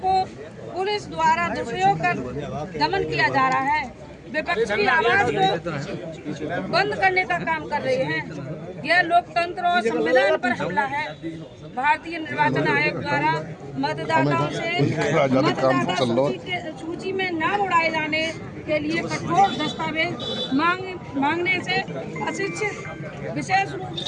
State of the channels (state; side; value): identical; both; correlation 1.00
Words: को पुलिस द्वारा दुरुपयोग कर दमन किया जा रहा है। विपक्ष की आवाज को बंद करने का काम कर रहे हैं। यह लोकतंत्र और संविधान पर हमला है। भारतीय निर्वाचन आयोग द्वारा मतदाताओं से मतदाता सूची में नाम उड़ाए जाने के लिए कठोर दस्तावेज मांगने से अशिक्षित, विशेष रूप